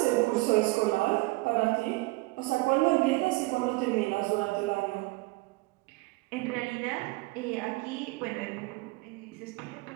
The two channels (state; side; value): quieter; left; 22.9 dB